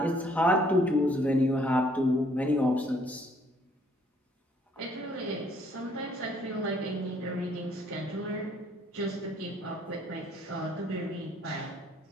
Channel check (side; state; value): both; normal; correlation 0.63